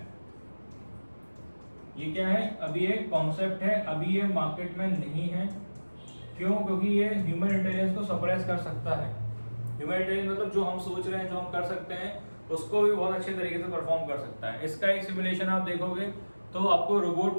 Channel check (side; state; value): both; inverted; correlation -1.00